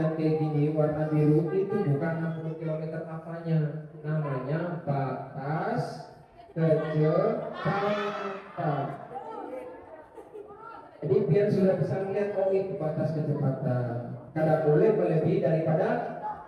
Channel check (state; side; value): identical; both; correlation 1.00